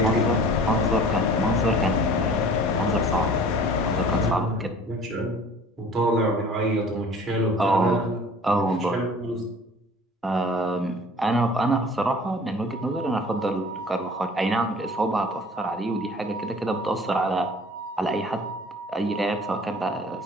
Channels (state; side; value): normal; both; correlation 0.47